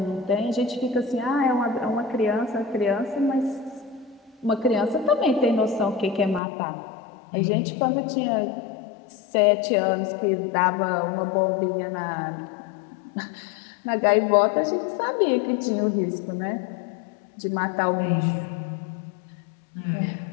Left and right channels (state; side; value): drops out; right; at 6.4 s